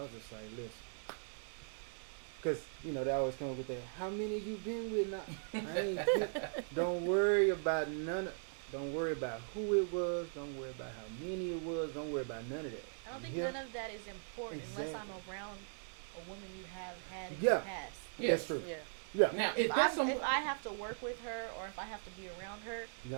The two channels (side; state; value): left; silent; digital silence